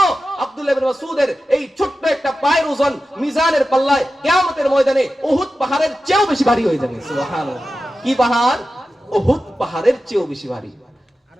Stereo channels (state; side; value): normal; both; correlation 0.93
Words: আব্দুল্লাহ ইবনে মাসউদের এই ছোট্ট একটা পায়ের ওজন মিজানের পাল্লায় কিয়ামতের ময়দানে উহুদ পাহাড়ের চেয়েও বেশি ভারী হয়ে যাবে। সুবহানাল্লাহ। কি পাহাড়? উহুদ পাহাড়ের চেয়েও বেশি ভারী।